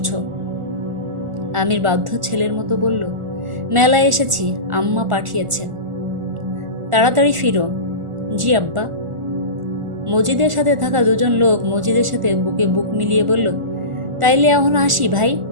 আমির বাধ্য ছেলের মতো বলল, মেলায় এসেছি, আম্মা পাঠিয়েছেন। তাড়াতাড়ি ফিরো। জি আব্বা। মজিদের সাথে থাকা 2জন লোক মজিদের সাথে বুকে বুক মিলিয়ে বলল, তাইলে এখন আসি ভাই।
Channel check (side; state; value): left; late; 1.4 ms